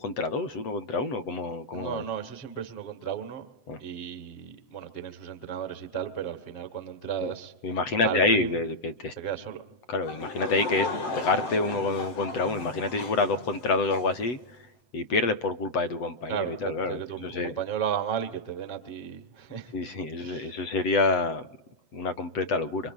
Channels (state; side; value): late; right; 7.8 ms